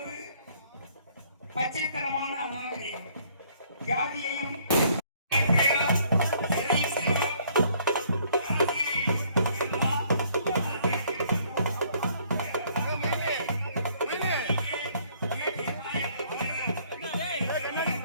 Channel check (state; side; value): inverted; both; correlation -0.63